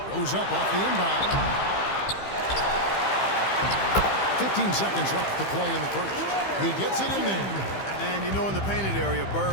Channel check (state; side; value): late; right; 15 ms